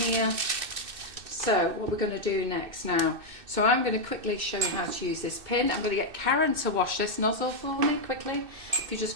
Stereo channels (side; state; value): left; late; 2.6 ms